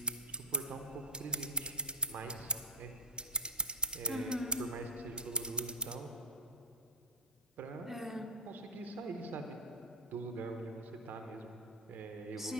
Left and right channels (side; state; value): both; normal; correlation -0.06